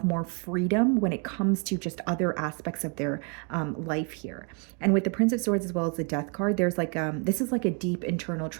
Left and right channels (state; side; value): quieter; left; 37.2 dB